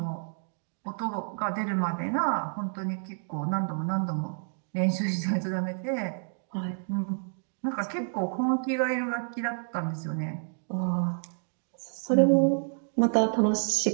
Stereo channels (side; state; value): left; silent; digital silence